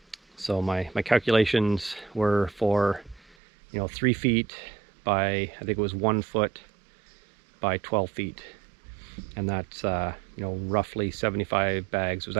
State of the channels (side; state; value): left; drops out; at 3.4 s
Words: So my calculations were for 3 feet by, I think it was 1 foot by 12 feet, and that's roughly 75 bags. It was